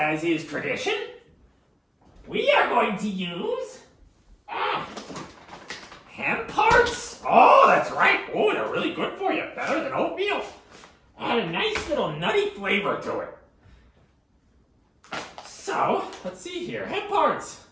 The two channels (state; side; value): identical; both; correlation 1.00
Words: is tradition, we are going to use hemp parts. Oh, that's right. Oh, they're really good for you. Better than oatmeal. Add a nice little nutty flavor to it. So, let's see here. Hemp parts.